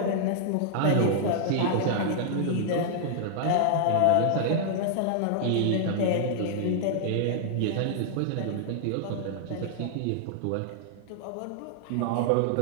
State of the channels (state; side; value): different; both; correlation -0.01